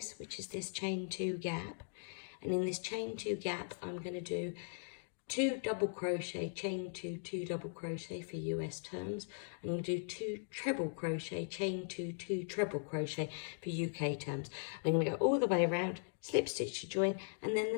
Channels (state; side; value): silent; right; digital silence